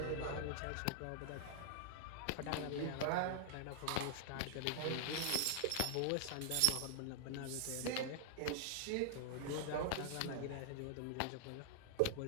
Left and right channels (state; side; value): different; both; correlation -0.01